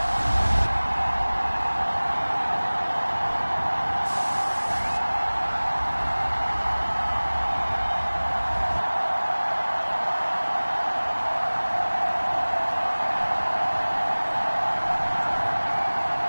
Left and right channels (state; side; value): inverted; both; correlation -1.00